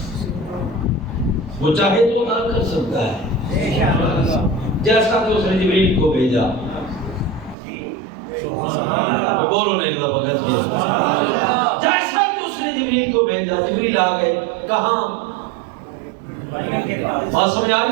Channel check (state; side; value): drops out; left; at 7.6 s